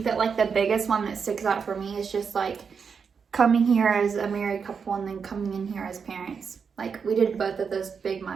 that like the biggest one that sticks out for me is just like coming here as a married couple and then coming in here as parents. Like we did both of those big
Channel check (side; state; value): left; quieter; 6.0 dB